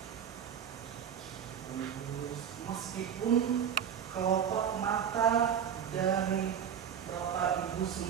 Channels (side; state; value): left; quieter; 8.4 dB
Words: Meskipun kelopak mata dari Bapak Ibu